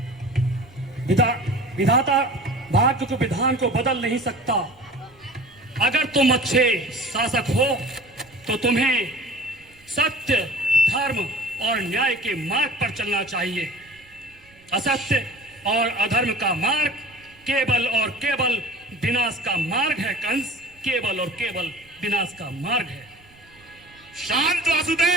विधाता भाग्य के विधान को बदल नहीं सकता। अगर तुम अच्छे शासक हो तो तुम्हें सत्य, धर्म और न्याय के मार्ग पर चलना चाहिए। असत्य और अधर्म का मार्ग केवल और केवल विनाश का मार्ग है कंस, केवल और केवल विनाश का मार्ग है। शांत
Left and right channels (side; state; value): right; noise; rumble, 29 dB below the sound